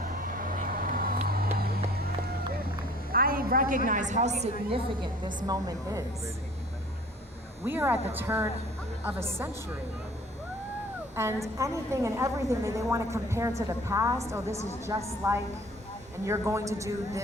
I recognize how significant this moment is. We are at the turn of a century. And anything and everything that they want to compare to the past, oh, this is just like, and you're going to do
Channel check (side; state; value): both; normal; correlation 0.50